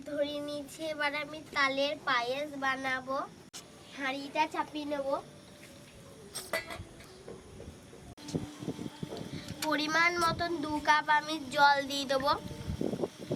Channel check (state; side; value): identical; both; correlation 1.00